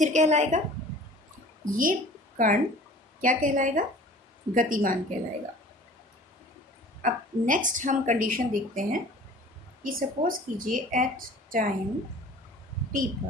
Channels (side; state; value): both; normal; correlation 0.46